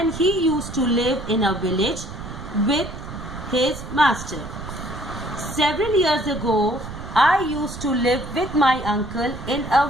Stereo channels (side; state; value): right; noise; rumble, 11 dB below the sound